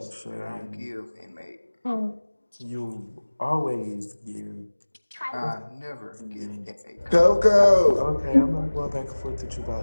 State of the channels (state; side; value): inverted; both; correlation -1.00